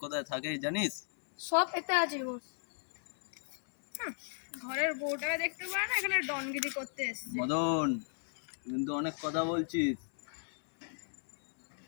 কোথায় থাকে জানিস? সব এতে আছে বস। ঘরের বউটাকে দেখতে পারে না, এখানে ডনগিরি করতে এসছে। মদন, কিন্তু অনেক কথা বলছিস।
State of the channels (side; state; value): right; silent; 54 dB below the other